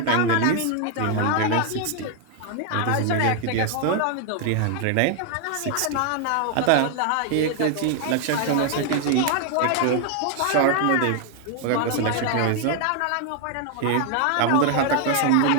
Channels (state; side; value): different; both; correlation 0.00